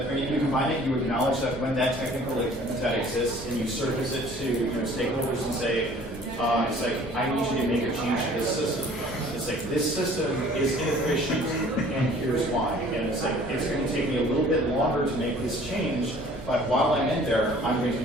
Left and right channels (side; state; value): both; normal; correlation 0.52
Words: you acknowledge that when that technical that exists, and you surface it to stakeholders and say, it's like, I need you to make a change to this system. It's like, this system is inefficient, and here's why. And it's like, it's going to take me a little bit longer to make this change, but while I'm in there, I'm going to